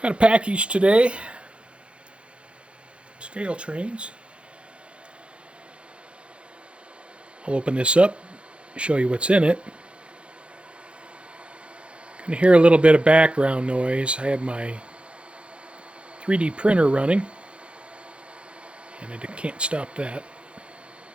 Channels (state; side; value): late; left; 0.059 ms